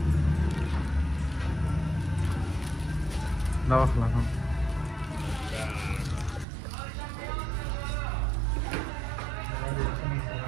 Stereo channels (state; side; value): drops out; left; at 6.5 s